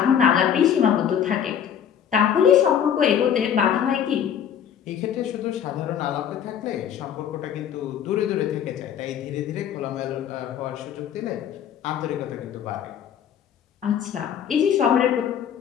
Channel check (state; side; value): quieter; right; 8.9 dB